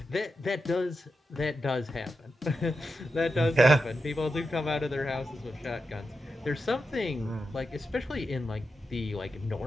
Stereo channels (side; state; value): both; normal; correlation 0.88